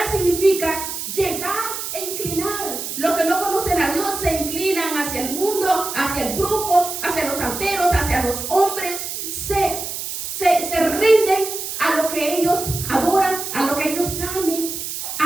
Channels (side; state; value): right; noise; hiss, 6 dB below the sound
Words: significa llegar e inclinar. Los que no conocen a Dios se inclinan hacia el mundo, hacia el brujo, hacia los santeros, hacia los hombres. Se rinden a lo que ellos adoran, a lo que ellos amen,